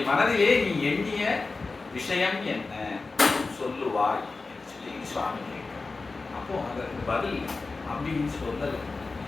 மனதிலே நீ எண்ணிய விஷயம் என்ன சொல்லுவாய் என்று சொல்லி சுவாமி கேட்கிறார். அப்போ அதற்கு பதில் அம்பியின் சொல்லல,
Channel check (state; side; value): quieter; right; 3.8 dB